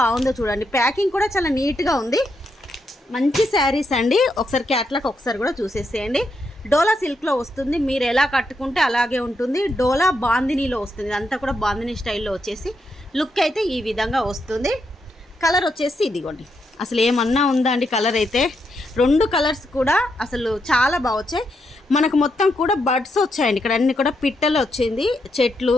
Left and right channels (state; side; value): normal; both; correlation 0.81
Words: చూడండి, ప్యాకింగ్ కూడా చాలా నీట్గా ఉంది. మంచి శారీస్ అండి. ఒకసారి క్యాట్లాగ్ ఒకసారి కూడా చూసేసేయండి. డోలా సిల్క్లో వస్తుంది, మీరు ఎలా కట్టుకుంటే అలాగే ఉంటుంది. డోలా బాందినీలో వస్తుంది, ఇదంతా కూడా బాందినీ స్టైల్లో వచ్చేసి లుక్ అయితే ఈ విధంగా వస్తుంది. కలర్ వచ్చేసి ఇదిగోండి, అసలు ఏమన్నా ఉందా అండి కలర్ అయితే. 2 కలర్స్ కూడా అసలు చాలా బాగా వచ్చాయి. మనకు మొత్తం కూడా బడ్స్ వచ్చాయండి. ఇక్కడ అన్ని కూడా పిట్టలు వచ్చింది, చెట్లు,